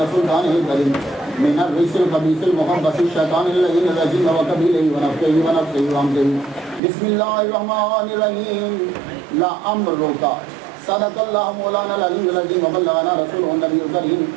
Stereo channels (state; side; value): drops out; left; at 6.8 s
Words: سلطانه الكريم من الرجس الخبيث المخبث الشيطان اللعين الرجيم وكبيله ونفخه ونفسه وهمزه بسم الله الرحمن الرحيم لأمرك صدق الله مولانا العلي العظيم وبلغنا رسوله النبي الكريم